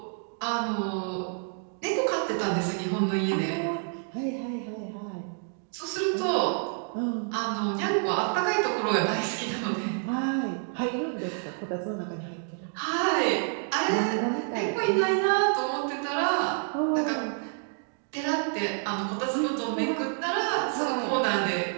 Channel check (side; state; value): left; silent; 55 dB below the other